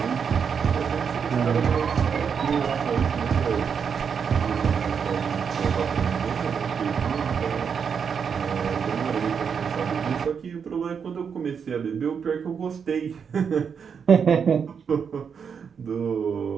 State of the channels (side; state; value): left; quieter; 6.7 dB